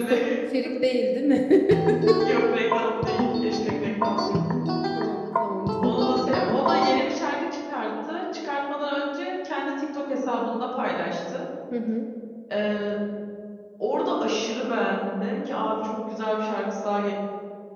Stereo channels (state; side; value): identical; both; correlation 1.00